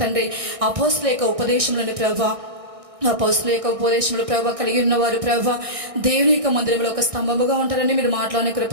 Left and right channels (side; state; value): left; late; 1.6 ms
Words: తండ్రి అపోస్తలుల యొక్క ఉపదేశంలోని ప్రభా అపోస్తుల యొక్క ఉపదేశంలో ప్రభావ కలిగి ఉన్నవారు ప్రభావ దేవుని యొక్క మందిరంలో ఒక స్తంభముగా ఉంటారని మీరు మాట్లాడిన